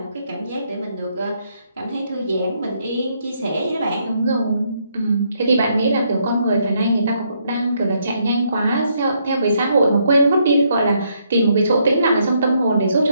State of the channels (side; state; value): both; inverted; correlation -0.73